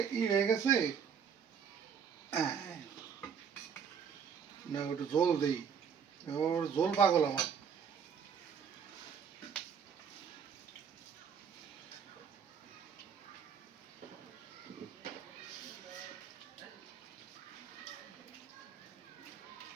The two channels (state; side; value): quieter; left; 7.1 dB